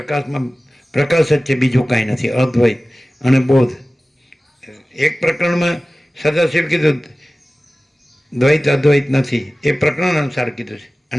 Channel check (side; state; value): both; normal; correlation 0.97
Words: પ્રકાશ જ છે, બીજું કાંઈ નથી. અદ્વૈત અને બોધ. એક પ્રકરણમાં સદાશિવ કીધું દ્વૈત અદ્વૈત નથી, એ પ્રકરણ અનુસાર કીધું છે.